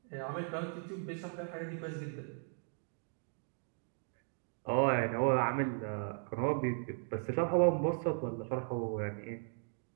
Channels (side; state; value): left; silent; 53 dB below the other